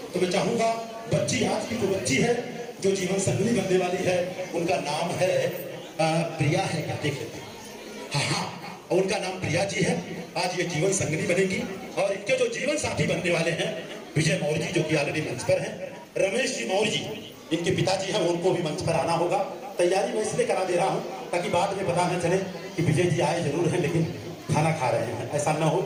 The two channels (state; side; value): identical; both; correlation 1.00